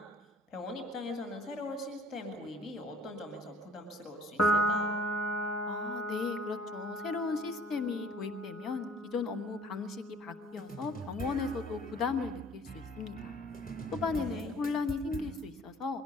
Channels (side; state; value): both; normal; correlation 0.52